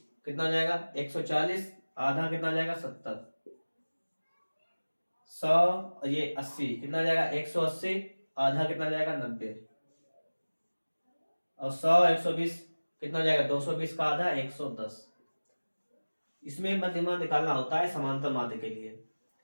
कितना हो जाएगा? 140, आधा कितना हो जाएगा? 70। 100 और ये 80 कितना हो जाएगा? 180, आधा कितना हो जाएगा? 90। और 100, 120 कितना हो जाएगा? 220 का आधा 110। इसमें मध्यमान निकालना होता है समांतर माध्य के लिए।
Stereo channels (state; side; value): inverted; both; correlation -1.00